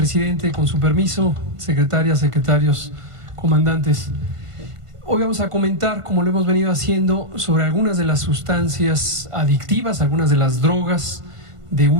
con su permiso, secretarias, secretarios, comandantes. Hoy vamos a comentar, como lo hemos venido haciendo, sobre algunas de las sustancias adictivas, algunas de las drogas de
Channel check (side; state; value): left; late; 1.5 ms